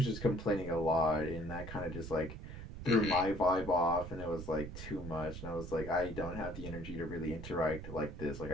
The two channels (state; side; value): noise; right; rumble, 10 dB below the sound